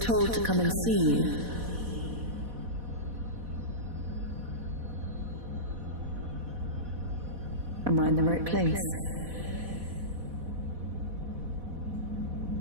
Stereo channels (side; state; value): left; late; 4.1 ms